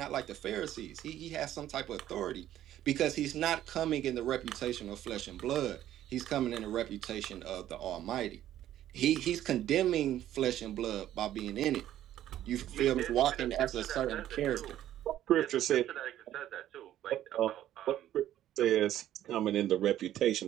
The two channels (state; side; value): quieter; left; 12.4 dB